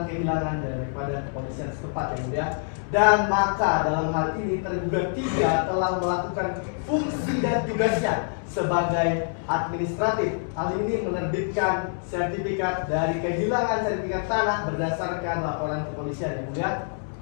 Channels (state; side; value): silent; right; 61 dB below the other